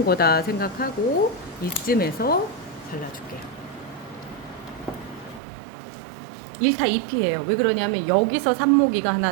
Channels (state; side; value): drops out; left; at 5.4 s